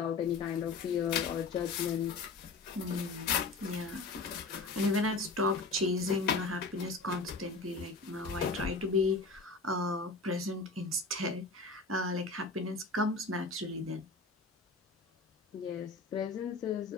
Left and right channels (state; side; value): quieter; right; 3.8 dB